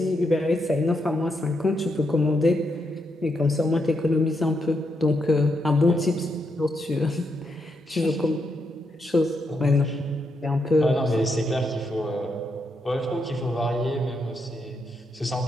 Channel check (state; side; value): normal; both; correlation 0.81